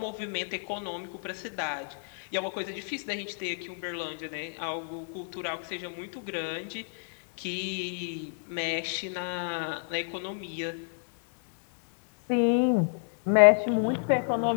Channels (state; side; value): silent; right; 58 dB below the other